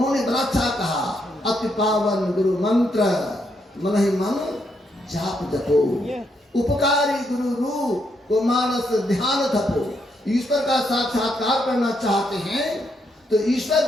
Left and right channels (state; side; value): normal; both; correlation 0.78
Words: बड़ा अच्छा कहा, अति पावन गुरु मंत्र मन ही मन जाप जपो, उपकारी गुरु रूप को मानस ध्यान थपो। ईश्वर का साक्षात्कार करना चाहते हैं तो ईश्वर